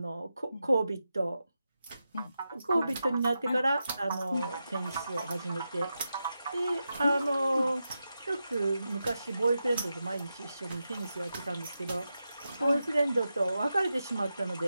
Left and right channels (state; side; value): inverted; both; correlation -0.89